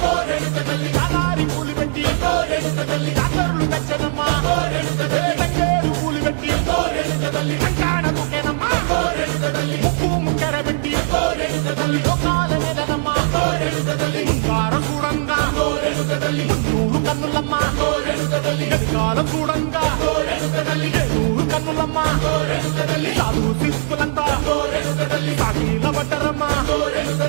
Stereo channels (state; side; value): silent; left; digital silence